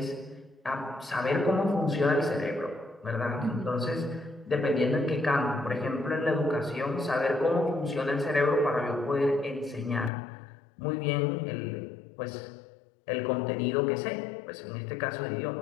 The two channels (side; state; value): right; drops out; at 10.1 s